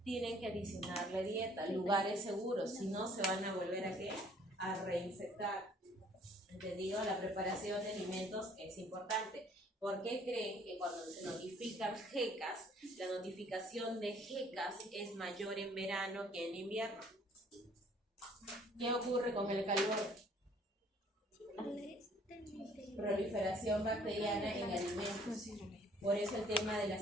Tienen que adicionarle dieta, lugares seguros, si no se van a volver a ¿qué? A reinfectar. ¿Entendido? La preparación de alimentos es importante. ¿Por qué creen que cuando se notifican GECAS, la notificación de GECAS es mayor en verano que en invierno? ¿Qué ocurre con el calor? Proliferación bacteriana en alimentos. Por eso el tema de la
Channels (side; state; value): both; normal; correlation 0.59